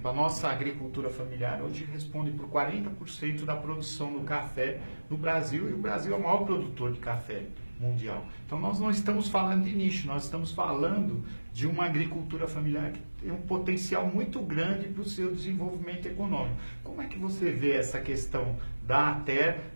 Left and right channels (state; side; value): inverted; both; correlation -1.00